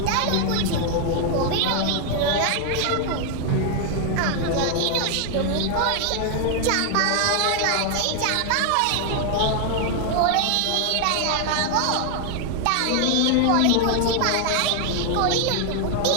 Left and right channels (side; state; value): both; different; correlation 0.00